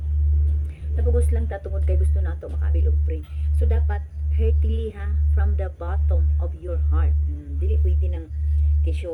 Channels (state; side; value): identical; both; correlation 1.00